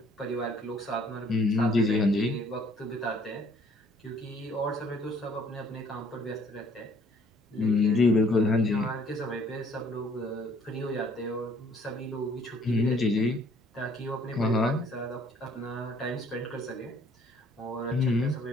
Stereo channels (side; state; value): both; normal; correlation 0.60